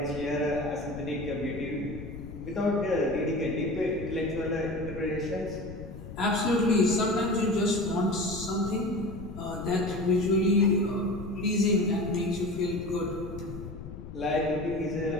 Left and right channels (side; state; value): left; noise; rumble, 12 dB below the sound